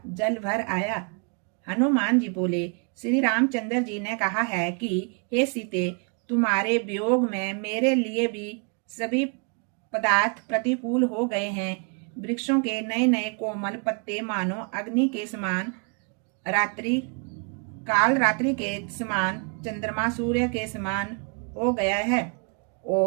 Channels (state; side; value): quieter; left; 38.2 dB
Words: जल भर आया। हनुमान जी बोले, श्री रामचंद्र जी ने कहा है कि हे सीते, तुम्हारे वियोग में मेरे लिए भी सभी पदार्थ प्रतिकूल हो गए हैं। वृक्षों के नए नए कोमल पत्ते मानो अग्नि के समान, रात्रि के समान, चंद्रमा सूर्य के समान हो गया है,